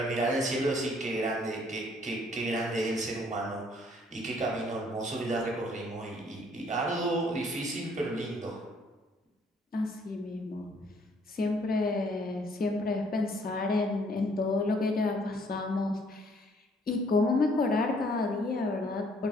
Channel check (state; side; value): normal; both; correlation 0.63